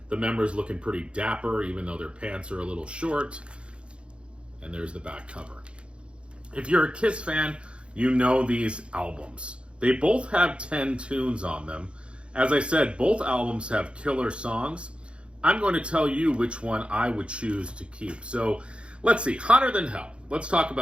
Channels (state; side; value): late; left; 0.058 ms